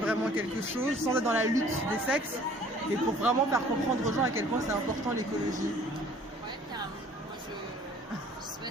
quelque chose sans être dans la lutte des sexes, mais pour vraiment faire comprendre aux gens à quel point c'est important l'écologie? Ouais, carrément. Moi je sais pas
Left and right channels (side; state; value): both; normal; correlation 0.54